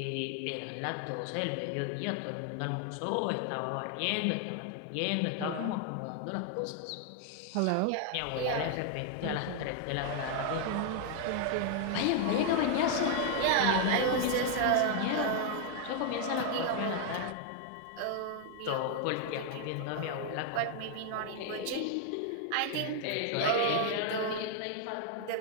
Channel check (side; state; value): both; different; correlation 0.00